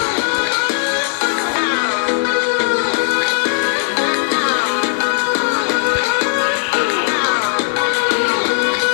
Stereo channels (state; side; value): silent; right; digital silence